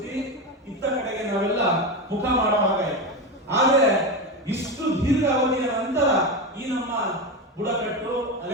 ಇತ್ತ ಕಡೆಗೆ ನಾವೆಲ್ಲ ಮುಖ ಮಾಡುವಾಗಾಯಿತು. ಆದರೆ ಇಷ್ಟು ದೀರ್ಘ ಅವಧಿಯ ನಂತರ ಈ ನಮ್ಮ ಬುಡಕಟ್ಟು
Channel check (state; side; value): normal; both; correlation 0.17